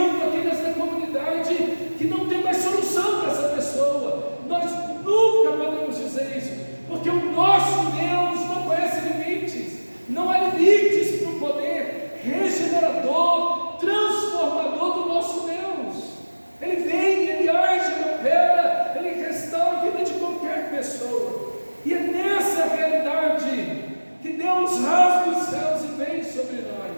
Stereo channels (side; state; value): both; inverted; correlation -1.00